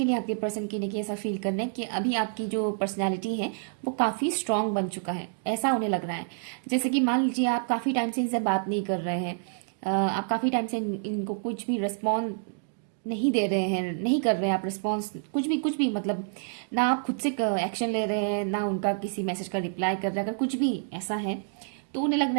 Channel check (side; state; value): left; silent; digital silence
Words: आपके पर्सन की नहीं ऐसा फील करना है कि अभी आपकी जो पर्सनैलिटी है वो काफ़ी स्ट्रांग बन चुका है, ऐसा उन्हें लग रहा है। जैसे कि मान लीजिए आप काफ़ी टाइम से इनसे बात नहीं कर रहे हैं, आप काफ़ी टाइम से इनको कुछ भी रिस्पॉन्स नहीं दे रहे हैं, नहीं कर रहे हैं आप रिस्पॉन्स, कुछ भी मतलब ना आप खुद से एक्शन ले रहे हैं, ना उनका किसी मैसेज का रिप्लाई कर रहे हैं। अगर कुछ भी ऐसा है तो उन्हें लग